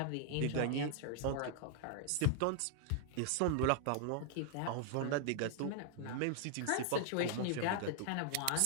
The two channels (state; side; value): different; both; correlation 0.00